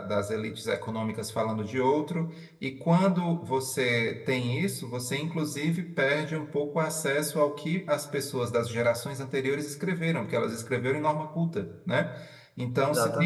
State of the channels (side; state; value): both; identical; correlation 1.00